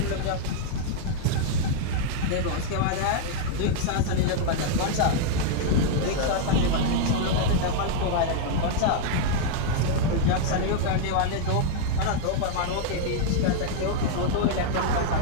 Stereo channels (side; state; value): both; different; correlation -0.01